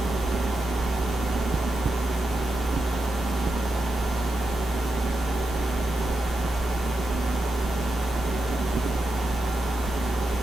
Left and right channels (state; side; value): normal; both; correlation 0.87